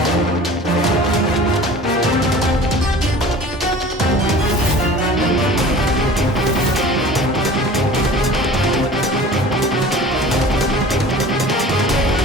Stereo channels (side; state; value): both; normal; correlation 0.42